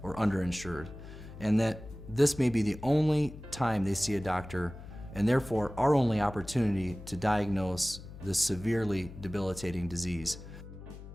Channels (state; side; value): noise; left; hum, 14 dB below the sound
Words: or underinsured, and that this may be the only time they see a doctor, and therefore our only opportunity to diagnose this severely debilitating disease.